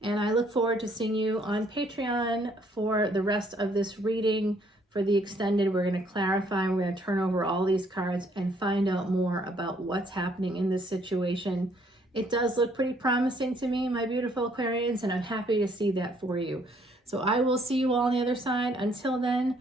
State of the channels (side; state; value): both; normal; correlation 0.66